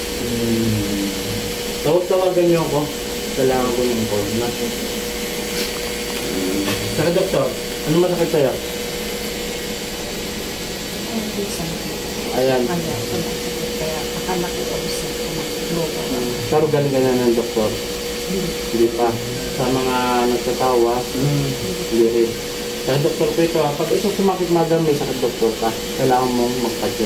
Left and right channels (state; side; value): identical; both; correlation 1.00